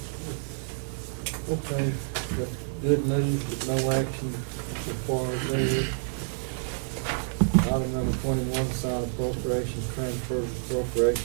Okay, that's good news, but no action so far as there. Item number 21, sign appropriations, transfers,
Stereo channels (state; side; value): silent; left; 59 dB below the other